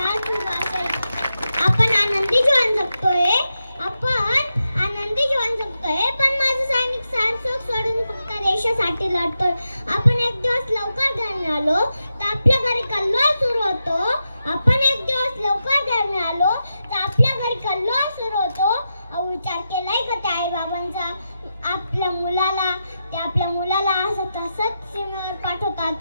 उभा असेल. आपण आनंदी जीवन जगतोय, आपण आनंदी जीवन जगतोय, पण माझा सैनिक सारसोक सोडून फक्त देशासाठी लढतोय. आपण एक दिवस लवकर घरी आलो तर आपल्या घरी कल्लोळ सुरू होतो. आपण एक दिवस लवकर घरी आलो तर आपल्या घरी कल्लोळ सुरू होतो. विचार केलाय का त्या आई बाबांचा? आपल्या मुलाला असं तसंच सीमेवर पाठवतात.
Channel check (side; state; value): both; inverted; correlation -0.88